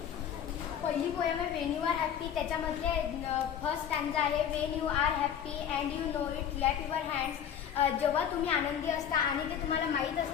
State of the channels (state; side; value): quieter; right; 9.0 dB